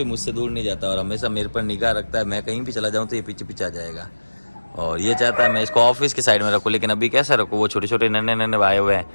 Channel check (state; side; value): inverted; both; correlation -1.00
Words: मुझसे दूर नहीं जाता और हमेशा मेरे पर निगाह रखता है। मैं कहीं भी चला जाऊँ तो ये पीछे पीछे आ जाएगा और ये चाहता है मैं इसको ऑफिस की साइड में रखूँ, लेकिन अभी कैसे रखूँ? वो छोटे छोटे नन्हे नन्हे आए हुए हैं,